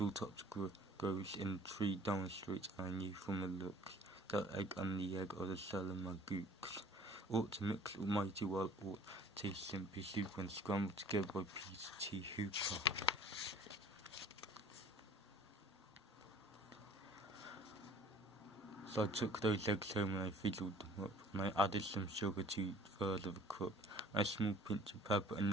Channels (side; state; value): both; normal; correlation 0.49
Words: grows in 3 down the street, and I knew from the looks that egg and the egg of the Salamagoose ought to mix mighty well, or taste simply soup when scrambled together by Peter T. Hooper. So I took those eggs home and I fizzled them up, and I added some sugar to 1/3 of a cup, and a small pinch of pepper, and